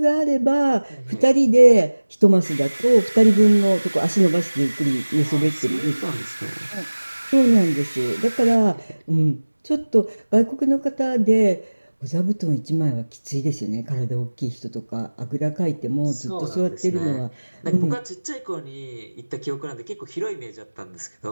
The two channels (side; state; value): both; inverted; correlation -1.00